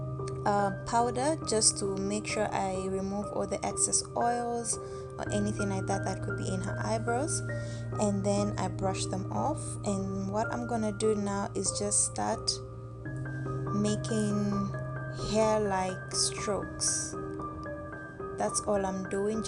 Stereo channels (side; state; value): both; identical; correlation 1.00